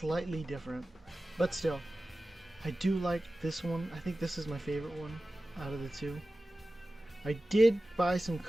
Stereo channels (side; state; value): both; normal; correlation 0.95